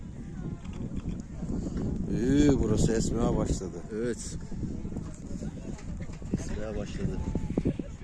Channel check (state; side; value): identical; both; correlation 1.00